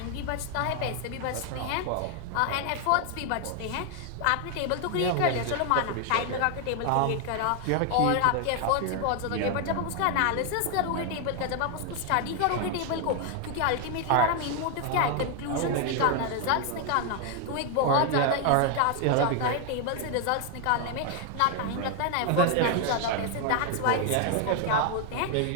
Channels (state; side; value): different; both; correlation 0.01